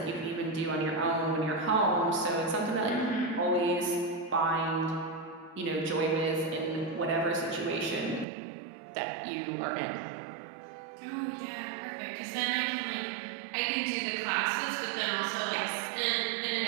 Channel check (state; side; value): drops out; left; at 8.2 s